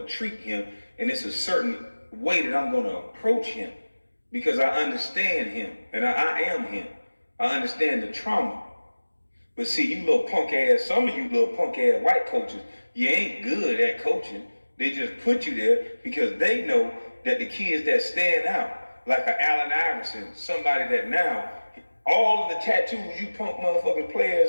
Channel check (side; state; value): both; inverted; correlation -1.00